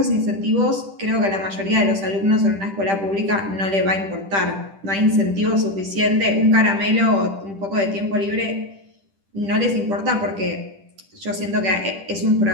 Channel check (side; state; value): left; late; 10 ms